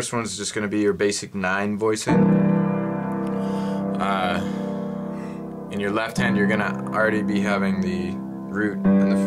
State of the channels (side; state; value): both; identical; correlation 1.00